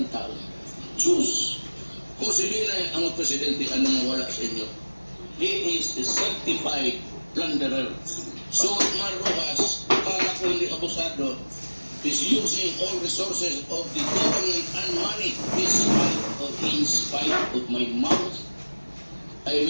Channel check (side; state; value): both; inverted; correlation -1.00